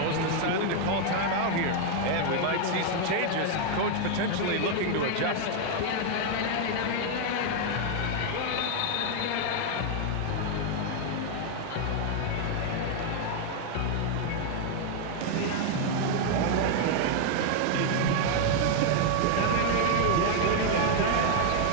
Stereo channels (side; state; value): both; different; correlation 0.00